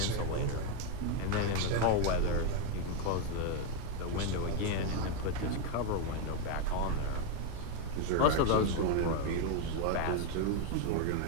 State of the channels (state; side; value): different; both; correlation 0.01